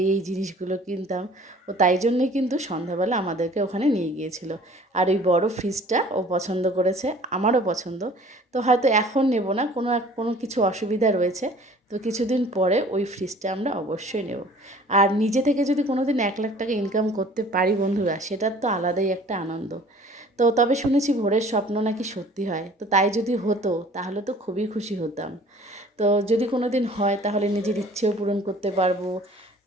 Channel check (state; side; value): normal; both; correlation 0.50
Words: জিনিসগুলো কিনতাম। ও তাই জন্যই কিন্তু সন্ধ্যাবেলা আমাদেরকে ওখানে নিয়ে গিয়েছিল। আর ওই বড় ফ্রিজটা ও পছন্দ করেছে, আমারও পছন্দ। তো হয়তো এখন নেব না, কোনো কিছু অসুবিধা রয়েছে। তো কিছুদিন পরে ওই ফ্রিজটা আমরা অবশ্যই নেব। আর নিজে থেকে যদি কোনো দিন 1,00,000 টাকা ইনকাম করতে পারি বন্ধুরা, সেটার তো আলাদাই একটা আনন্দ। তো তবে শুনেছি ভোরের স্বপ্ন নাকি সত্যি হয়, তো তাই যদি হতো তাহলে তো খুবই খুশি হতাম। তো যদি কোনো দিন হয় তাহলে নিজের ইচ্ছেও পূরণ করতে পারবো,